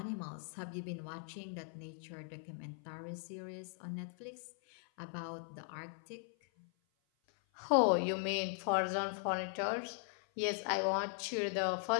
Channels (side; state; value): right; silent; 52 dB below the other